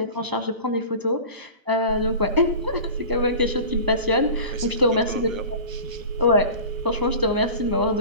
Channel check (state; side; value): late; left; 1.1 ms